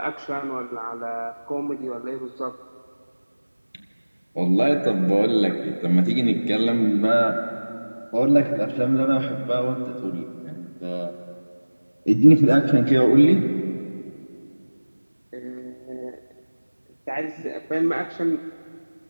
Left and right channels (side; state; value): both; inverted; correlation -1.00